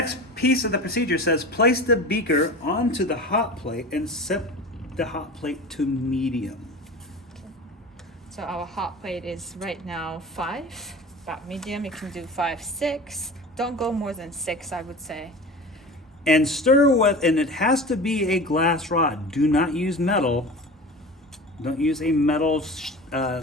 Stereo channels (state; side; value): normal; both; correlation 0.34